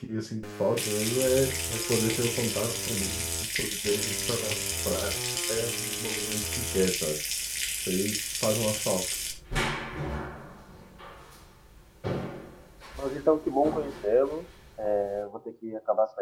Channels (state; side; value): identical; both; correlation 1.00